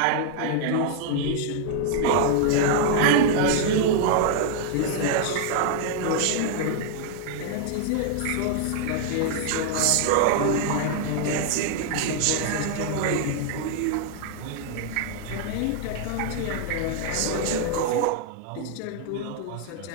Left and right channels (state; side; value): different; both; correlation -0.01